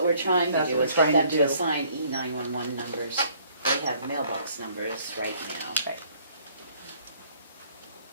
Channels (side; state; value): both; inverted; correlation -0.61